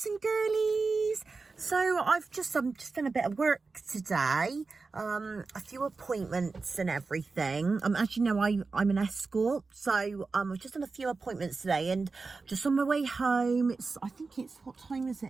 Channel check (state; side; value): quieter; left; 4.1 dB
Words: and girlies. So I've just done a bit of work today, a few appointments and everything. As you know, I'm an escort, so I've just done a few appointments today, and just on my way home. I think it's, what time is